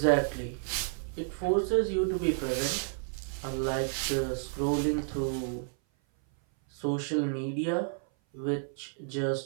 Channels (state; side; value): silent; left; 56 dB below the other